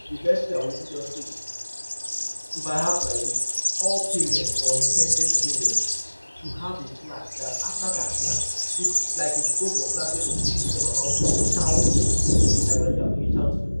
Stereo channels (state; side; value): inverted; both; correlation -1.00